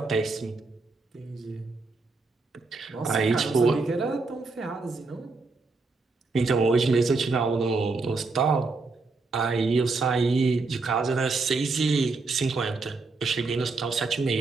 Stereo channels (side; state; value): left; quieter; 3.9 dB